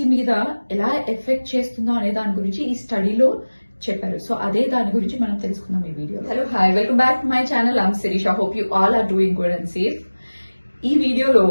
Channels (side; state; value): both; inverted; correlation -1.00